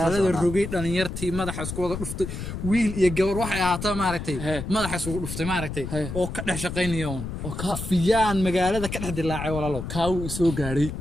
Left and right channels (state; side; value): noise; left; rumble, 7 dB below the sound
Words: rogay dhalinyartii madaxa isku wada dhuftay wiil iyo gabar waxay ahaataa maaragtay madaxa isku dhuftay maaragtay oo ka dhex shaqeynaya oo ka fiyaan magaalada ka dhex dilaacay walaalo kaaw soo gaaray